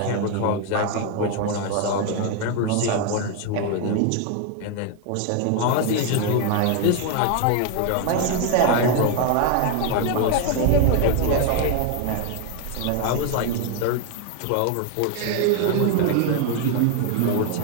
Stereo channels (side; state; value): both; different; correlation 0.01